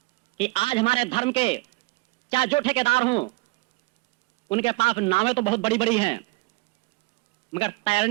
कि आज हमारे धर्म के चाहे जो ठेकेदार हों, उनके पास नावें तो बहुत बड़ी बड़ी हैं, मगर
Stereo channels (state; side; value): quieter; left; 23.6 dB